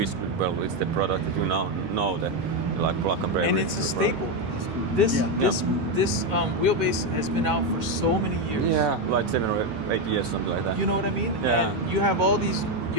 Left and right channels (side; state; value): both; normal; correlation 0.07